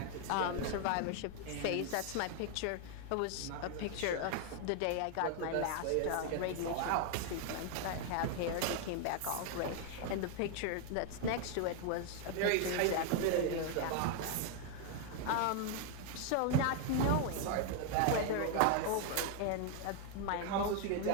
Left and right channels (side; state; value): both; different; correlation 0.00